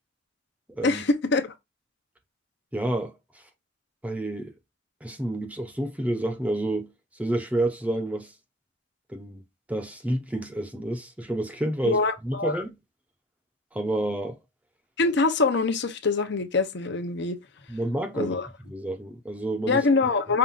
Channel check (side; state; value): both; normal; correlation 0.37